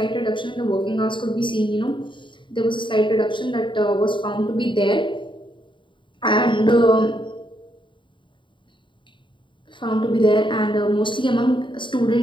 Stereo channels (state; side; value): late; right; 0.23 ms